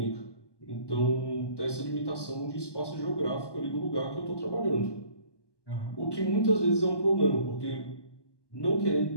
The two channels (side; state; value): right; late; 1.2 ms